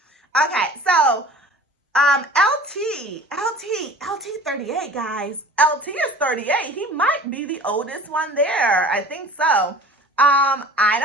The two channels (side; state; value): both; normal; correlation 0.43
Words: Okay, so LT 38, guys. LT is 38. He might be the oldest one there. I think so. I